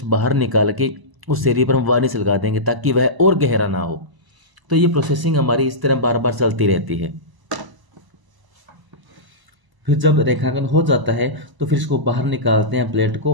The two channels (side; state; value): left; late; 1.0 ms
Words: बाहर निकाल के उस एरिया पर हम वार्निश लगा देंगे ताकि वह और गहरा ना हो। तो ये प्रोसेसिंग हमारी इस तरह बार बार चलती रहती है। फिर जब रेखांकन हो जाता है तो फिर इसको बाहर निकालते हैं प्लेट